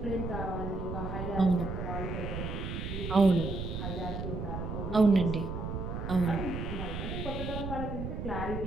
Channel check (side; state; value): right; noise; rumble, 4 dB below the sound